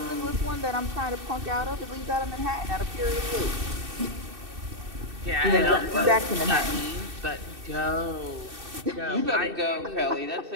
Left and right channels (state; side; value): late; left; 2.6 ms